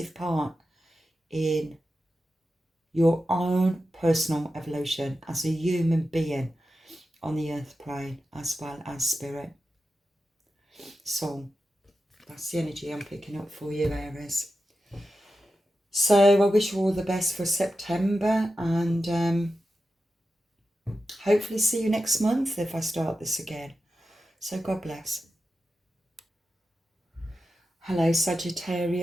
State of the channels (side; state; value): both; normal; correlation 0.91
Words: part in your own personal evolution as a human being on the earth plane, as well as spirit. So that's the energy I'm picking up for you, Aries. So I wish you all the best for September, and hopefully see you next month if I start this again. So God bless. Hello